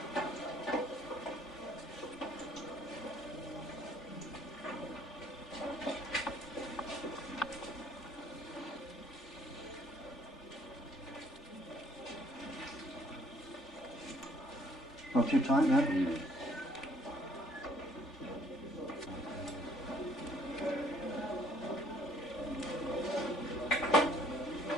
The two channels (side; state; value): both; normal; correlation 0.62